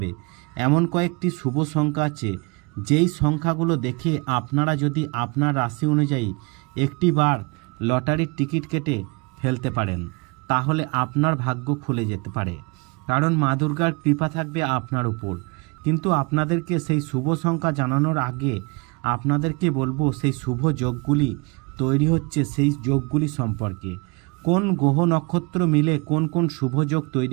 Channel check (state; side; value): quieter; left; 29.0 dB